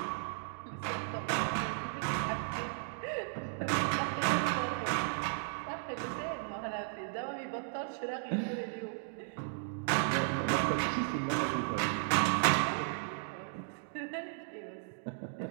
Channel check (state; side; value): silent; left; digital silence